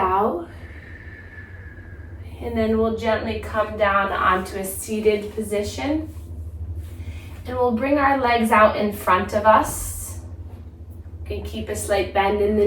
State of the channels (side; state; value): both; identical; correlation 1.00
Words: And then we'll gently come down onto a seated position. And we'll bring our legs out in front of us. You can keep a slight bend in the